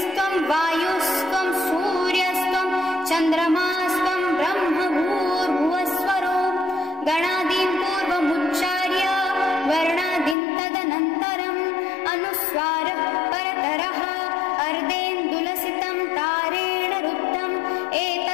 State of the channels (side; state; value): right; drops out; at 10.4 s